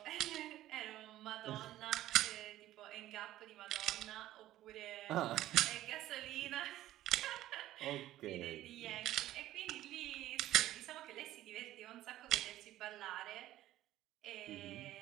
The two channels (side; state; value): left; quieter; 14.3 dB